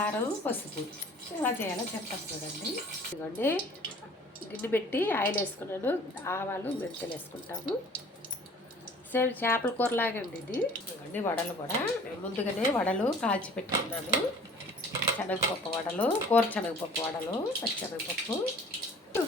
పసుపు ఎలా చేయాలో చెప్తాను చూడండి. ఇదిగోండి గిన్నె పెట్టి ఆయిల్ వేసుకున్నాను, ఆవాలు, మెంతులు వేసుకుంటాము. సేమ్ చేపల కూరలాగే అండి ఇది. ఇదిగోండి వడలు కూడా ముందుగానే వడలు కాల్చి పెట్టుకున్నాను. శనగపప్పు వడలు, కూర శనగపప్పు వడలు, పచ్చిశనగపప్పు.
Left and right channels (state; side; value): normal; both; correlation 0.50